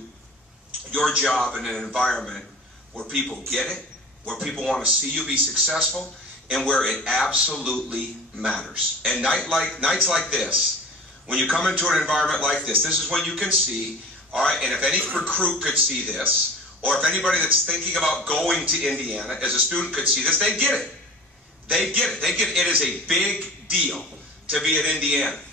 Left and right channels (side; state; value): both; normal; correlation 0.39